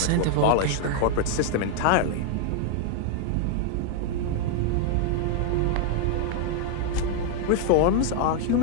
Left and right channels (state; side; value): different; both; correlation 0.00